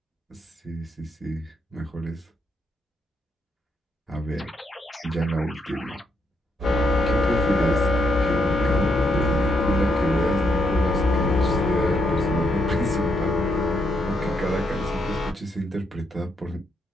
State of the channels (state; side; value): normal; both; correlation 0.78